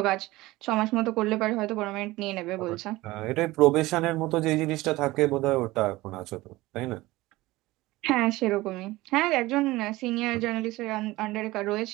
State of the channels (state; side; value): quieter; left; 19.2 dB